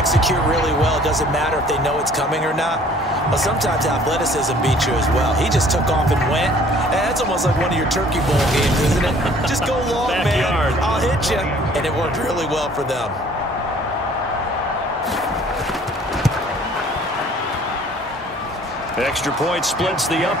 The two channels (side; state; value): both; normal; correlation 0.54